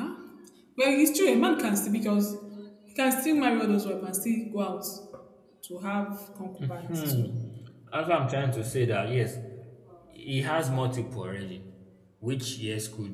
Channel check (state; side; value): identical; both; correlation 1.00